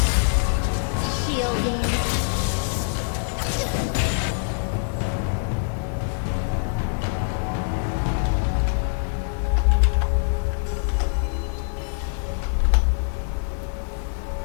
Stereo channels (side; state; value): right; silent; digital silence